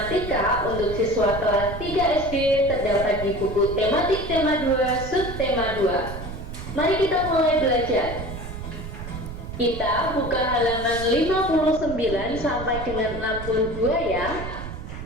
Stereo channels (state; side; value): noise; right; rumble, 9 dB below the sound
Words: untuk siswa kelas 3 SD terdapat di buku tematik tema 2 subtema 2. Mari kita mulai belajar. Kita buka halaman 59 sampai dengan 62 ya.